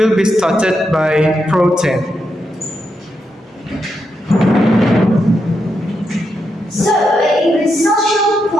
be started by Protein. So, English Social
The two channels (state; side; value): normal; both; correlation 0.83